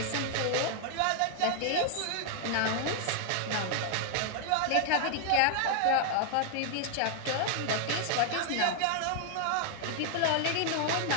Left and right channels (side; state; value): both; different; correlation 0.00